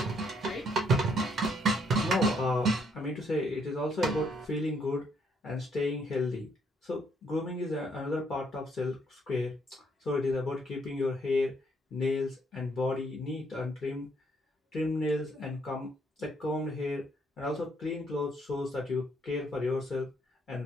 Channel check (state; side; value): normal; both; correlation 0.70